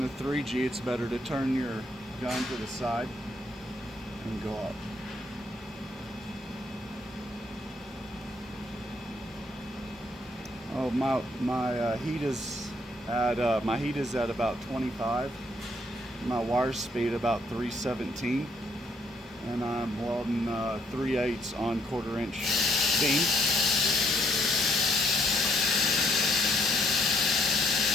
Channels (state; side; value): normal; both; correlation 0.69